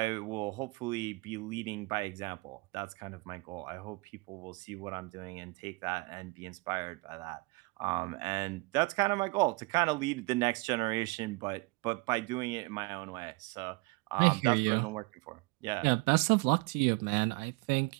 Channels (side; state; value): left; quieter; 26.8 dB